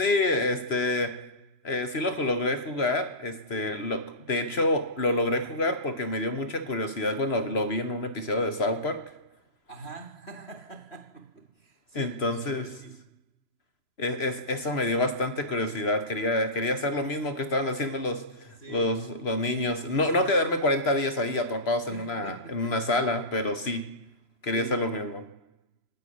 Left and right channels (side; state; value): right; late; 3.0 ms